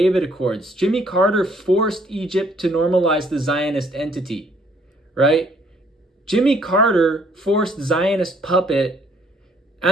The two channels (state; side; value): normal; both; correlation 0.64